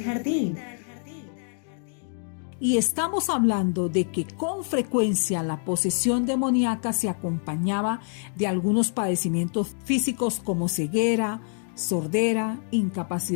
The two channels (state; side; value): silent; right; 61 dB below the other